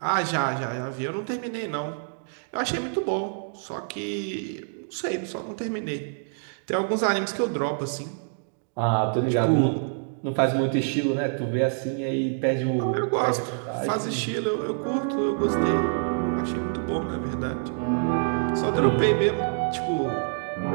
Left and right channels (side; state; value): left; silent; digital silence